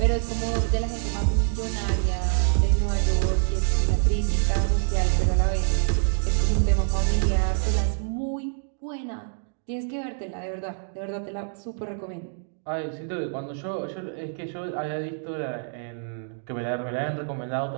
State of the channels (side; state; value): left; silent; digital silence